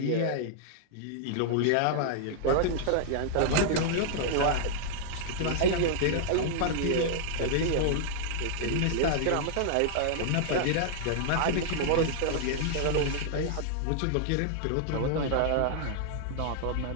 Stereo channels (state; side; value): different; both; correlation -0.01